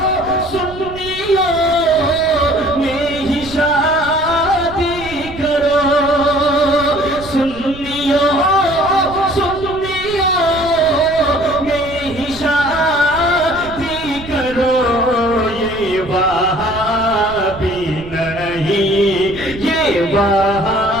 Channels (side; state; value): right; noise; rumble, 15 dB below the sound